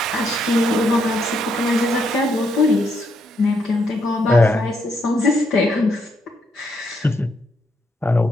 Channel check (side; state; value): both; normal; correlation 0.76